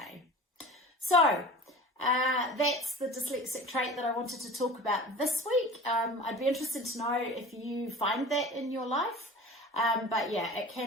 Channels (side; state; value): both; normal; correlation 0.38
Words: So that's the dyslexic trait that I wanted to talk about this week. I'd be interested to know if you find that in your life. But yeah, it